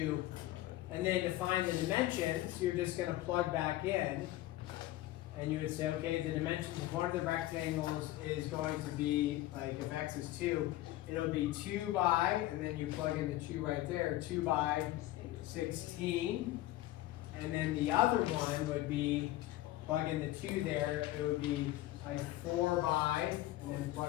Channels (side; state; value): right; quieter; 15.7 dB